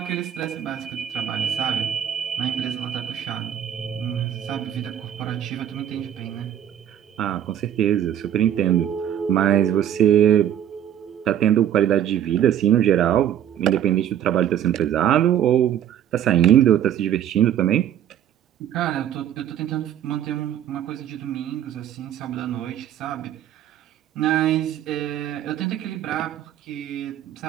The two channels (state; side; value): quieter; left; 10.4 dB